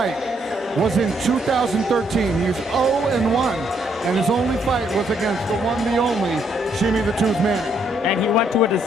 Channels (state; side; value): normal; both; correlation 0.72